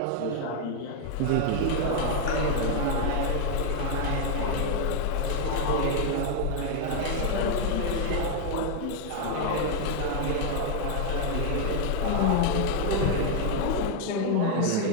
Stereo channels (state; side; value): different; both; correlation 0.00